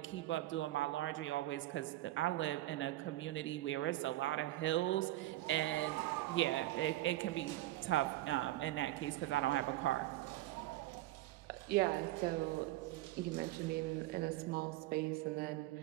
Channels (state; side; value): quieter; left; 16.4 dB